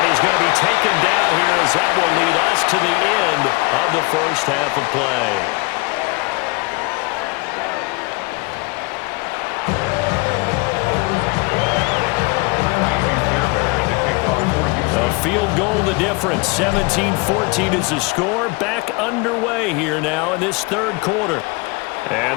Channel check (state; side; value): quieter; right; 27.0 dB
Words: he's going to be taken down here as that will lead us to the end of the first half of play. A field goal the difference. 17-14 is the score. Back underway here now in this third quarter.